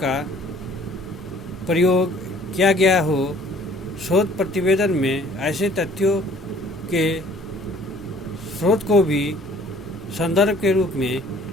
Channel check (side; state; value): left; noise; rumble, 25 dB below the sound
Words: प्रयोग किया गया हो, शोध प्रतिवेदन में ऐसे तथ्यों के स्रोत को भी संदर्भ के रूप में